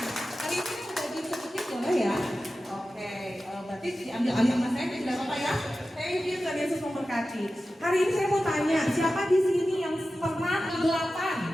Hari ini udah sedikit boleh ya. Oke, berarti diambil sama saya tidak apa-apa ya. Thank you, Tuhan Yesus memberkati. Hari ini saya mau tanya, siapa di sini yang pernah kegelapan?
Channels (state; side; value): normal; both; correlation 0.94